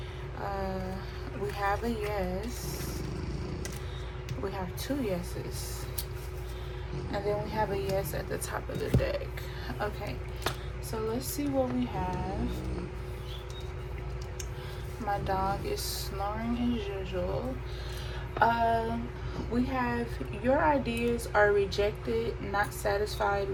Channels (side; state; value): both; identical; correlation 1.00